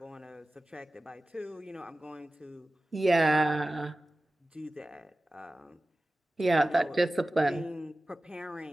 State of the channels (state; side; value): normal; both; correlation 0.96